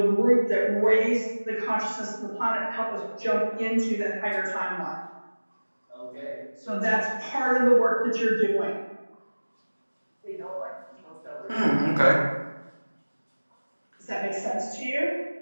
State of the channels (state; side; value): inverted; both; correlation -1.00